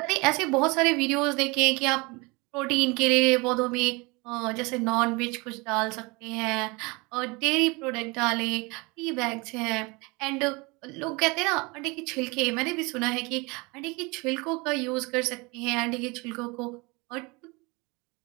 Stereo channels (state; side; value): quieter; left; 26.5 dB